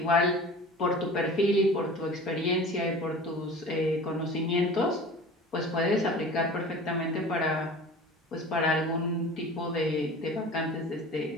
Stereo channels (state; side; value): normal; both; correlation 0.39